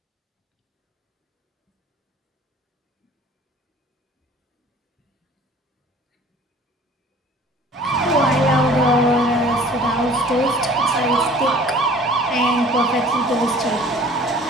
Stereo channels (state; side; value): normal; both; correlation 0.49